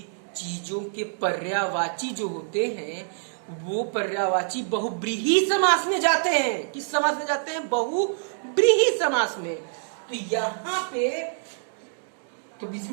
चीजों के पर्यायवाची जो होते हैं वो पर्यायवाची बहुब्रीही समास में जाते हैं। किस समास में जाते हैं, बहुब्रीही समास में। तो यहाँ पे तो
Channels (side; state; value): left; silent; digital silence